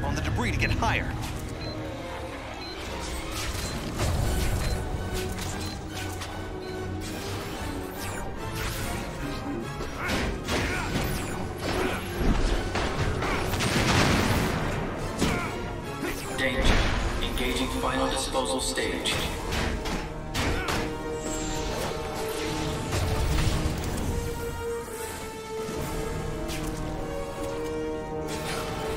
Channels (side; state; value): both; identical; correlation 1.00